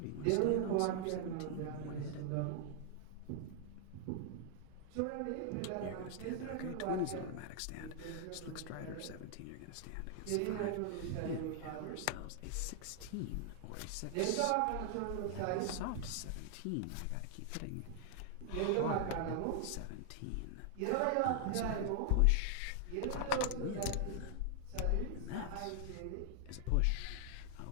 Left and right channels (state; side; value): different; both; correlation 0.00